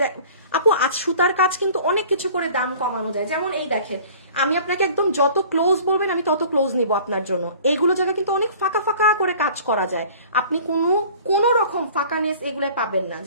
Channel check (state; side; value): inverted; both; correlation -0.47